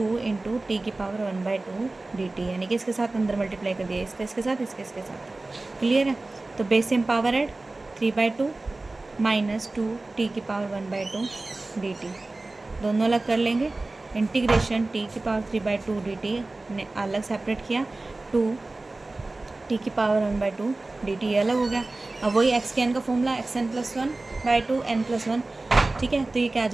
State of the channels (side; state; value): left; quieter; 3.1 dB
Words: इंटू टी की पावर 1/2 डी टी, यानी कि इसके साथ अंदर मल्टीप्लाई कर दिया, इसका इसके साथ, इसके इसके साथ। क्लियर है, तो base same power add 3/2 minus 2 T की पावर 1/2 डी टी, दोनों अलग कर लेंगे। इंटीग्रेशन टी की पावर 3/2 डी टी ने अलग सेपरेट किया, 2 टी की पावर 1/2 डी टी अलग हो गया। अब वही एक्स के एन का formula, X N plus 1/2 N plus 1। ठीक है, तो ये क्या आ